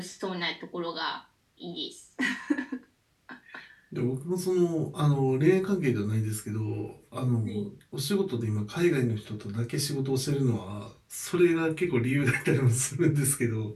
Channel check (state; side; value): identical; both; correlation 1.00